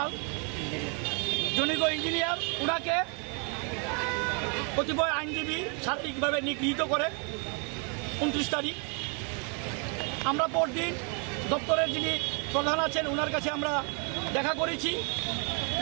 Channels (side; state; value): left; quieter; 36.9 dB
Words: জনৈক ইঞ্জিনিয়ার, ওনাকে কতিপয় আইনজীবী শারীরিকভাবে নিগৃহীত করে 29 তারিখ। আমরা পরদিন দপ্তরের যিনি প্রধান আছেন ওনার কাছে আমরা দেখা করেছি